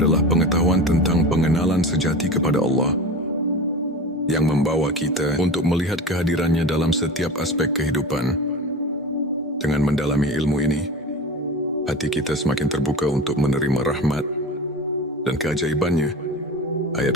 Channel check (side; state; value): both; normal; correlation 0.31